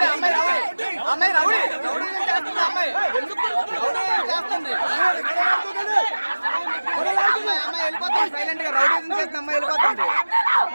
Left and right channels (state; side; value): inverted; both; correlation -1.00